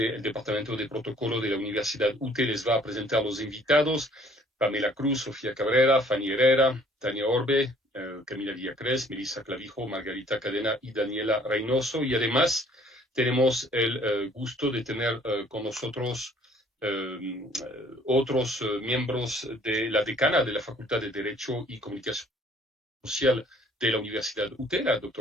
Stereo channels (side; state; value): both; normal; correlation 0.57